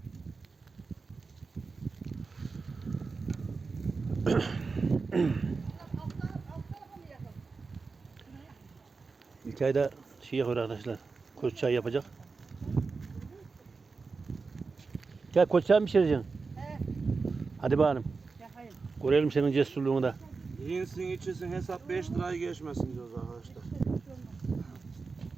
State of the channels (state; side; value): quieter; left; 4.4 dB